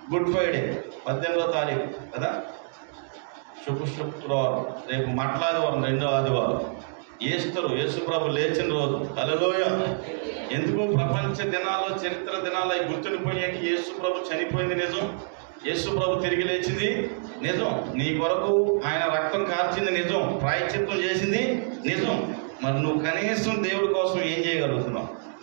గుడ్ ఫ్రైడే 18వ తారీఖు కదా, శుక్రవారం, రేపు మట్లాదివారం, 2వ ఆదివారం, ఈస్టర్, యేసు ప్రభు లేచిన రోజు. హల్లెలూయా. ఎందుకు? ప్రపంచ దినాల్లో, చరిత్ర దినాల్లో గుర్తుండిపోయాక యేసు ప్రభు చనిపోయింది నిజం, యేసు ప్రభు తిరిగి లేచింది నిజం, నీ కొరకు ఆయన రక్తం కార్చింది నిజం, ప్రాయశ్చిత్తం చేసింది నిజం. మరి నువ్వు కనీసం దేవుడి కోసం ఏం చేయగలుగుతున్నావు?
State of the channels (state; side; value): silent; left; digital silence